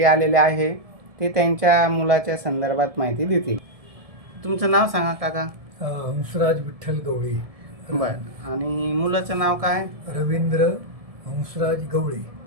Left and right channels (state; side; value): late; left; 1.7 ms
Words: आलेले आहे. ते त्यांच्या मुलाच्या संदर्भात माहिती देतील. तुमचं नाव सांगा काका. हंसराज विठ्ठल गवळी. बरं. आणि मुलाचं नाव काय? रवींद्र हंसराज गवळी.